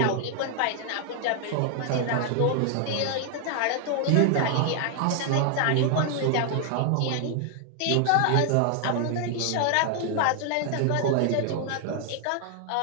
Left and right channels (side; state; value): both; different; correlation 0.00